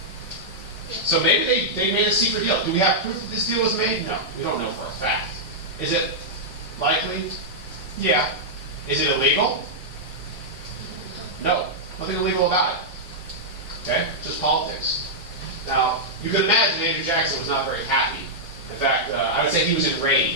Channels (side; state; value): both; normal; correlation -0.08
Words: So maybe they made a secret deal. Do we have proof that this deal was made? No, we don't know for a fact. Is it likely? Yeah. Is it illegal? No, nothing illegal about it. Okay, just politics. Now, you can imagine Andrew Jackson was not very happy. In fact, I would say he was